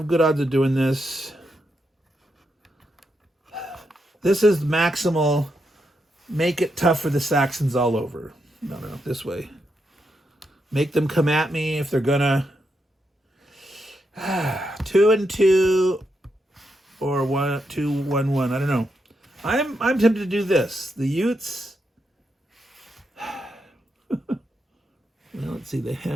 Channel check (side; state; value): both; normal; correlation 0.83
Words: good odds of doing this. This is maximal. Make it tough for the Saxons all over. No, this way. Make them come at me if they're gonna. 2 and 2 or 1, 2, 1, 1. I don't know. I'm tempted to do this. The Utes. Well, let's see. They